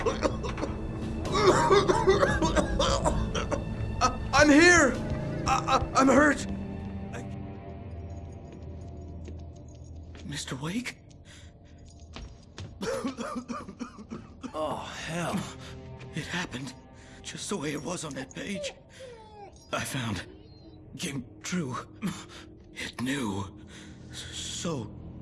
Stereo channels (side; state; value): both; identical; correlation 1.00